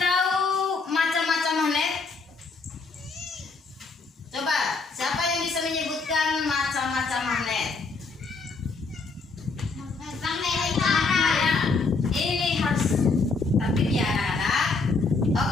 macam-macam magnet? Coba, siapa yang bisa menyebutkan macam-macam magnet? Ya, ini harus tertib ya anak-anak.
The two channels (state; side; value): quieter; right; 4.2 dB